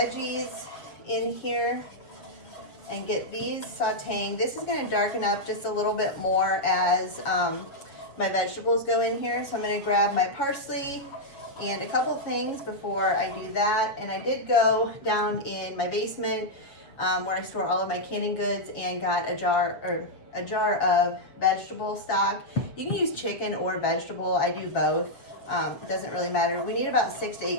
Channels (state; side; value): late; right; 7.2 ms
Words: in here. and get these sauteing. This is gonna darken up just a little bit more as my vegetables go in here. So I'm gonna grab my parsley and a couple things before I do that. And I did go down in my basement where I store all of my canning goods and got a jar of vegetable stock. You can use chicken or vegetable. I do both. It doesn't really matter. We need about 6 to